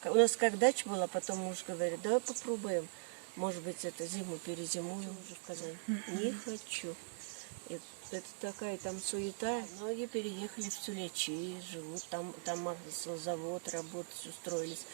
У нас как дача была, потом муж говорит, давай попробуем. Может быть, это зиму перезимуем уже в Казань. Не хочу. И это такая там суета. Многие переехали в Сулечи, живут там завод, работать устроились,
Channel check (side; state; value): left; silent; digital silence